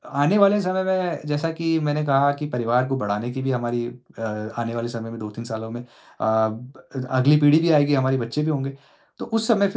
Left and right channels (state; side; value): identical; both; correlation 1.00